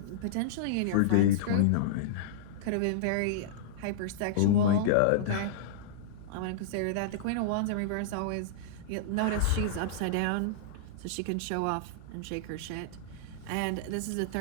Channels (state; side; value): different; both; correlation -0.02